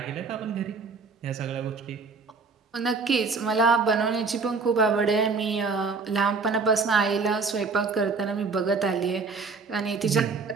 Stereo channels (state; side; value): quieter; left; 4.5 dB